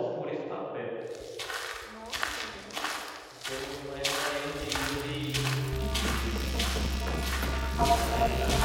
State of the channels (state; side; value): identical; both; correlation 1.00